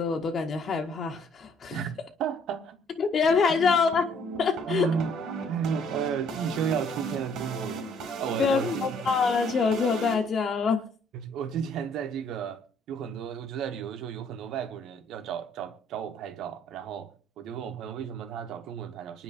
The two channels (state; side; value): normal; both; correlation 0.62